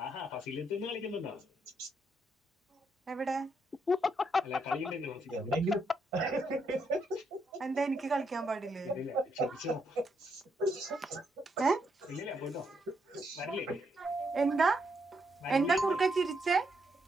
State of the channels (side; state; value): both; normal; correlation 0.77